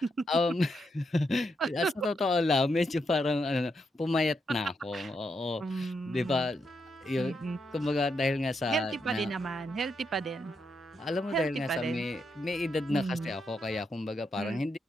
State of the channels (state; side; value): normal; both; correlation 0.81